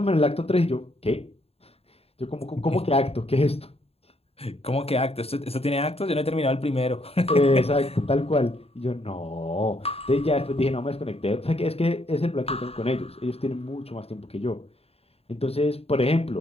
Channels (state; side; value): late; right; 0.29 ms